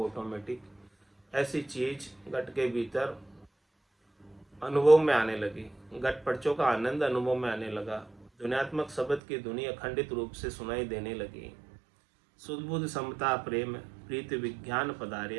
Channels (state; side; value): drops out; left; at 9.2 s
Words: ऐसी चीज घट के भीतर अनुभव में आने लगी, घट पर्चों का आनंद अनुभव में आने लगा, ध्वन्यात्मक शब्द की ध्वनि अखंडित रूप से सुनाई देने लगी। शुद्ध बुद्ध समता प्रेम प्रीति विज्ञान